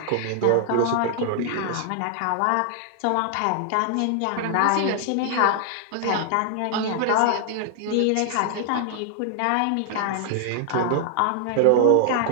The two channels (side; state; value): both; different; correlation 0.00